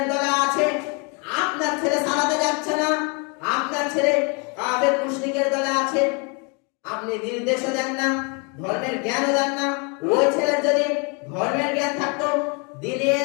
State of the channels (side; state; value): right; quieter; 33.6 dB